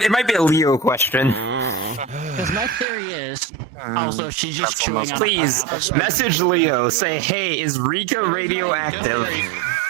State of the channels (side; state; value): left; drops out; at 2.9 s